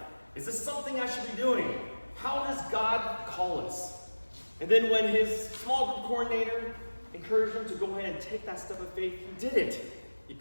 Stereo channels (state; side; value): inverted; both; correlation -1.00